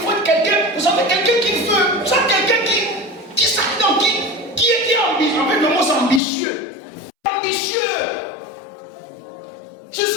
faut être quelqu'un, vous savez, quelqu'un qui veut, vous savez, quelqu'un qui s'attend, qui est ambitieux. En fait, le mot c'est ambitieux. Ambitieux. Je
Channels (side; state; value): right; drops out; at 6.2 s